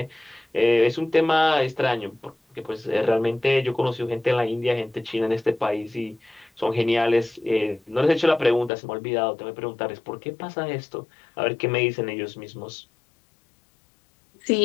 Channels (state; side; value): drops out; right; at 8.7 s